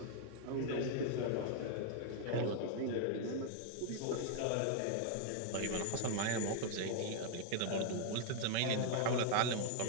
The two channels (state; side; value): different; both; correlation 0.00